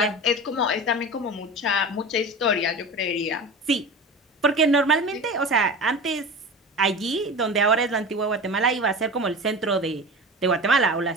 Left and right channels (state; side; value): normal; both; correlation 0.31